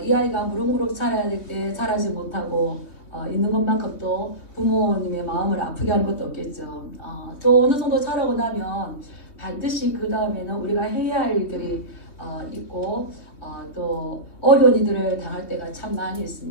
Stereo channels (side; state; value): right; late; 3.3 ms